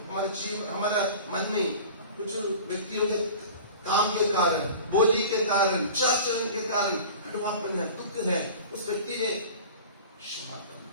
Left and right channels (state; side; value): inverted; both; correlation -0.39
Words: हमारे जीवन, हमारा मन में कुछ व्यक्तियों के काम के कारण, बोली के कारण, आचरण के कारण कटुआपन है, दुख है, उस व्यक्ति ने क्षमा